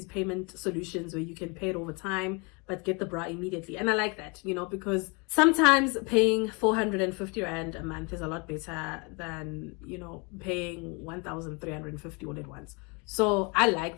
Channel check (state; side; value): quieter; right; 31.0 dB